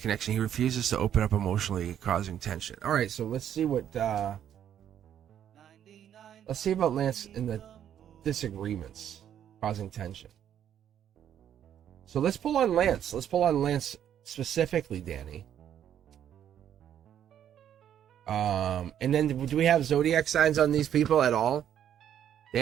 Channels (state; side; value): quieter; left; 9.9 dB